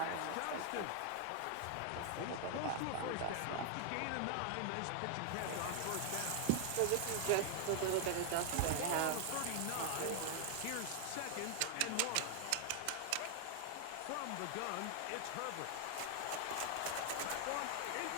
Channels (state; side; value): different; both; correlation 0.00